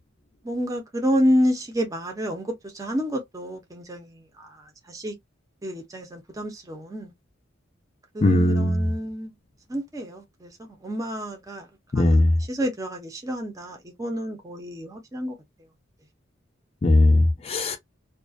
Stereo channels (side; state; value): both; normal; correlation 0.88